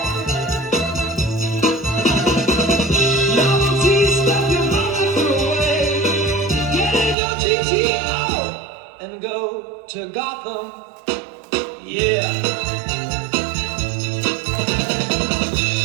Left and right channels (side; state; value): left; drops out; at 7.2 s